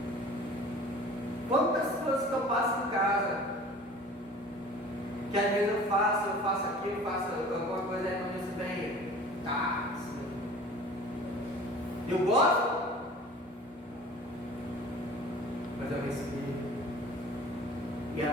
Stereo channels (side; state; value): both; normal; correlation 0.44